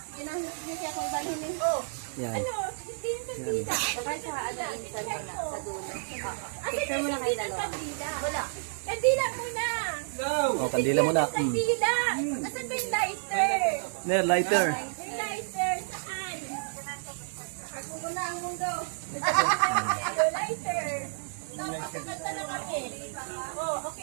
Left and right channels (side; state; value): left; silent; digital silence